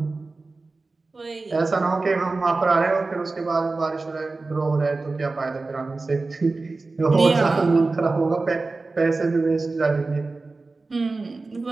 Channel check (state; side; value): quieter; left; 3.6 dB